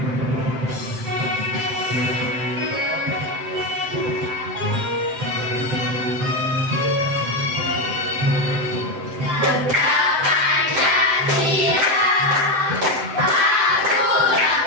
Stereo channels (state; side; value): late; left; 7.7 ms